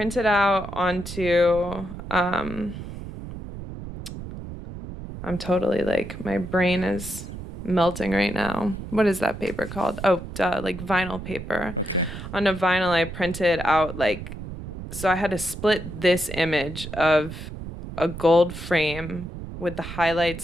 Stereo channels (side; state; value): right; noise; rumble, 10 dB below the sound